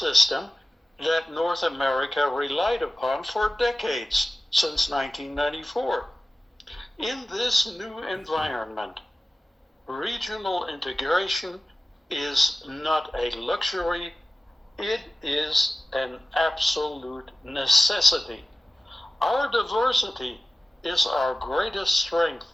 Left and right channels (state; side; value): normal; both; correlation 0.96